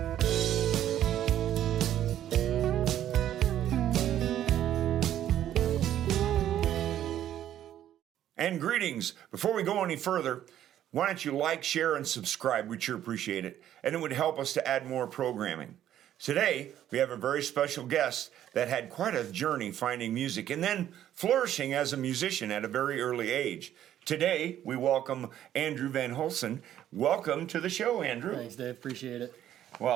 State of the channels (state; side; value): quieter; left; 11.5 dB